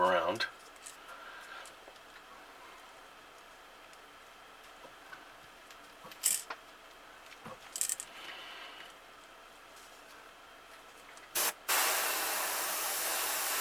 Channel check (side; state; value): both; identical; correlation 1.00